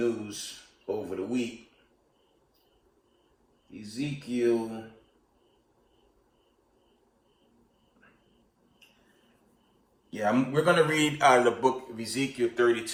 over the week. Yeah, we're going to read out of the book of Ezekiel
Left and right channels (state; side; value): identical; both; correlation 1.00